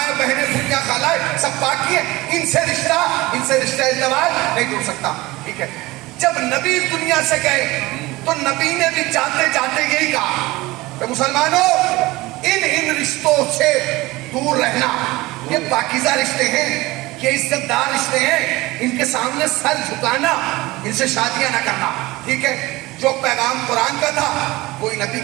بہنیں, پھوپھیاں, خالائیں سب پاک کیے, ان سے رشتہ ازدواج نہیں ٹوٹ سکتا. ٹھیک ہے, جب نبی اس دنیا سے گئے تو نبی نے بھی جاتے جاتے یہی کہا کہ مسلمانوں ان رشتوں سے دور رہنا. یہ پاکیزہ رشتے ہیں, یہ عزت دار رشتے ہیں, ان کے سامنے سر جھکانا, ان سے شادیاں نہ کرنا. ٹھیک ہے, جو پیغام قرآن کا تھا وہی نبی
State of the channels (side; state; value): left; quieter; 20.2 dB